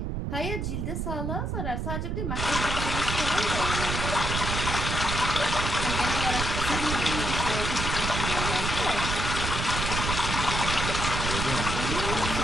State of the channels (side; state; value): right; noise; rumble, 2 dB below the sound